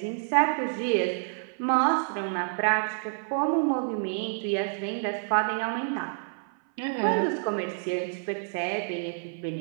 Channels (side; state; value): left; silent; 57 dB below the other